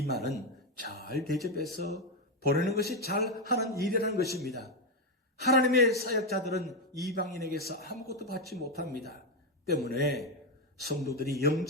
말은 잘 대접해서 보내는 것이 잘하는 일이라는 것입니다. 하나님의 사역자들은 이방인에게서 아무것도 받지 못합니다. 때문에 성도들이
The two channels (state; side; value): normal; both; correlation 0.07